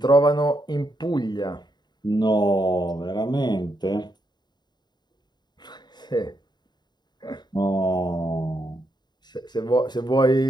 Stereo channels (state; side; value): late; right; 0.21 ms